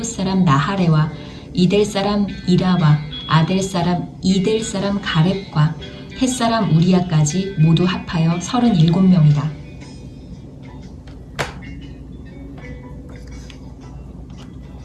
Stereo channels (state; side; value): identical; both; correlation 1.00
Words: 사람 나하레와 이델 사람 이라와 아델 사람 이델 사람 가렙과 헷 사람 우리야까지 모두 합하여 37명이다.